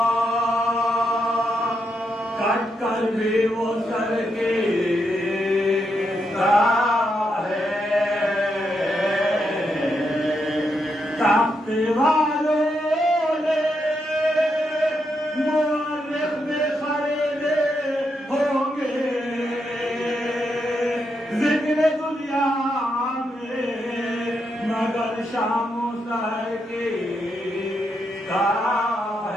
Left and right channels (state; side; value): normal; both; correlation 0.82